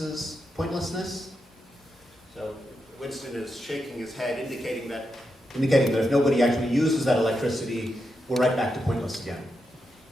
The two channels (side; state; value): both; normal; correlation 0.86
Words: pointlessness? So Winston is shaking his head, indicating that if nobody actually uses that electricity, we're right back to pointless again.